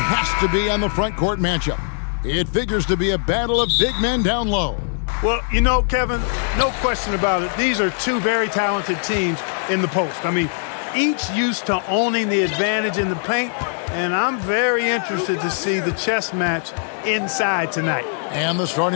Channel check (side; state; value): right; silent; digital silence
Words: to be on the front court matchup. It figures to be a battle of big men down low. Well, you know, Kevin, no question about it. These are two very talented teams in the post. I mean, each used to owning the advantage in the paint, and I'm very interested to see the chess match inside tonight. And the